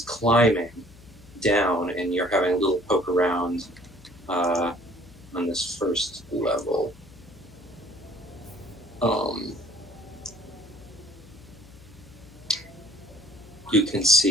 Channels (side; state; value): left; noise; hum, 22 dB below the sound